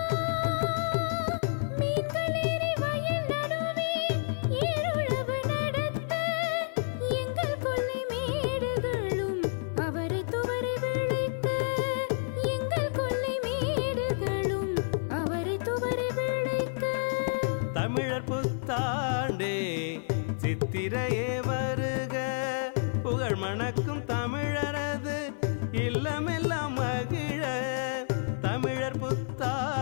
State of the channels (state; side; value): silent; right; 58 dB below the other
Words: மீன்களேறி வயல் நடுவே ஏறுழவு நடத்த. எங்கள் கொல்லை மேடுகளும் அவரை துவரை விளைக்க. எங்கள் கொல்லை மேடுகளும் அவரை துவரை விளைக்க. தமிழர் புத்தாண்டே சித்திரையே வருக. புகழ் மணக்கும் தமிழரது இல்லமெல்லாம் மகிழ. தமிழர்